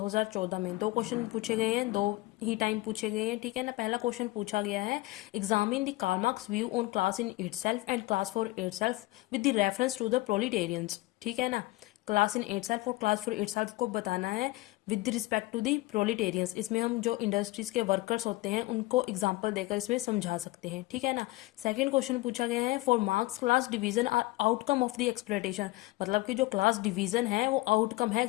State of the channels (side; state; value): right; quieter; 20.0 dB